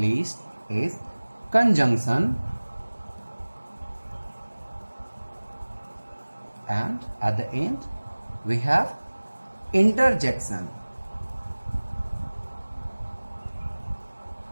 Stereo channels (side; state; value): both; inverted; correlation -1.00